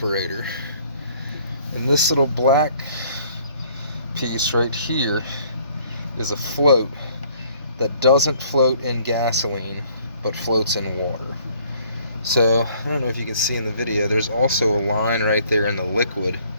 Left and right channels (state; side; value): inverted; both; correlation -0.60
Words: And this little black piece right here is a float that doesn't float in gasoline, but floats in water. So, I don't know if you can see in the video, there's also a line right there in the liquid.